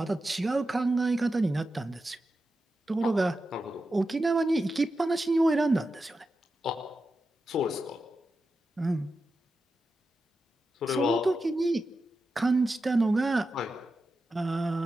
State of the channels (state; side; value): normal; both; correlation 0.90